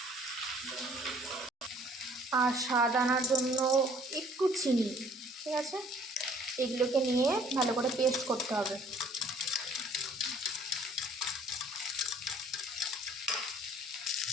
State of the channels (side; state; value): both; normal; correlation 0.56